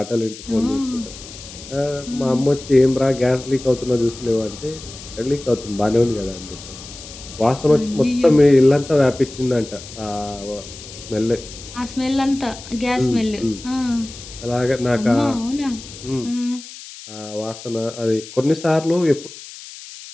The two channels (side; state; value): left; noise; hiss, 15 dB below the sound